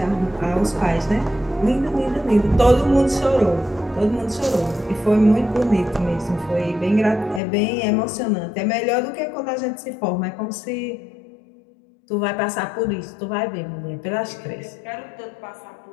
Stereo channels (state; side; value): drops out; right; at 7.4 s